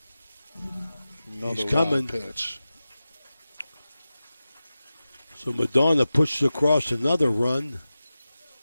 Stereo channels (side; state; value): both; inverted; correlation -0.94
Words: Another He's coming. Pitch. So Madonna pushes across another run.